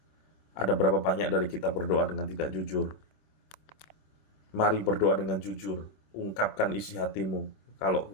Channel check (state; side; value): late; right; 26 ms